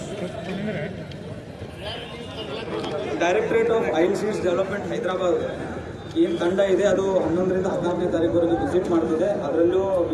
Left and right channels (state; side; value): identical; both; correlation 1.00